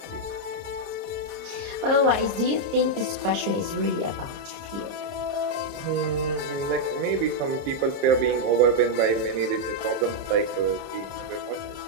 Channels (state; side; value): late; left; 30 ms